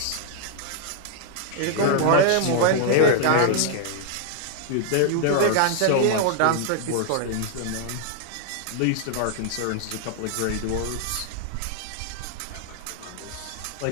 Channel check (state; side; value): different; both; correlation 0.00